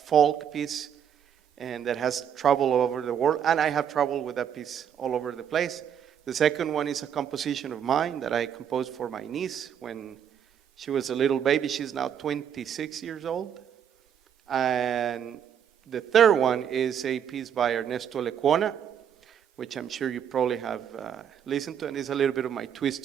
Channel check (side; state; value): left; quieter; 8.7 dB